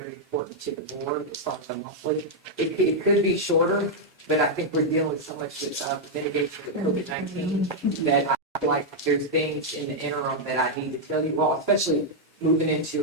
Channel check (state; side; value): normal; both; correlation -0.03